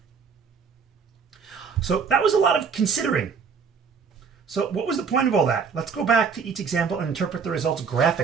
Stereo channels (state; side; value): quieter; left; 5.9 dB